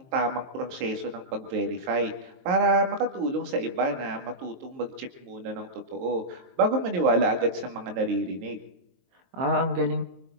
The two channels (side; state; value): left; late; 22 ms